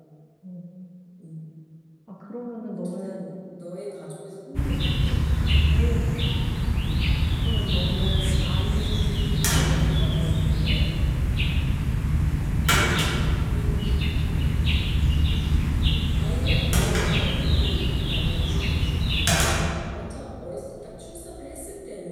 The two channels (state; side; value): identical; both; correlation 1.00